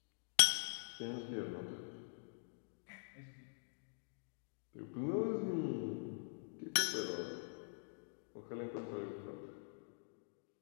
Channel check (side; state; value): right; silent; digital silence